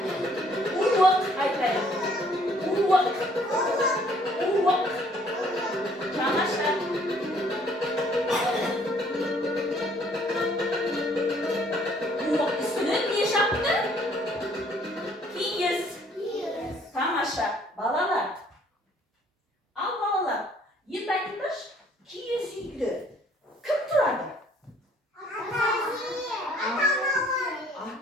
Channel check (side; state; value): both; normal; correlation 0.61